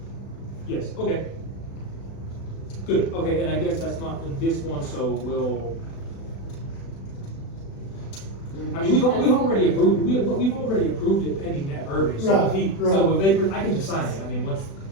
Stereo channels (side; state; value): right; late; 36 ms